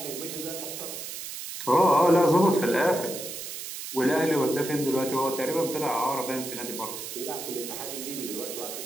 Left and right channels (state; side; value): noise; right; hiss, 8 dB below the sound